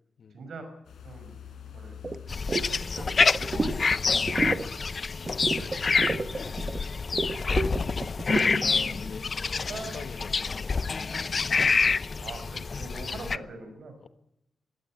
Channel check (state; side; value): quieter; right; 3.2 dB